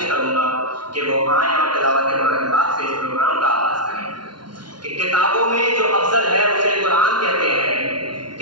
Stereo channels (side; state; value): left; late; 0.71 ms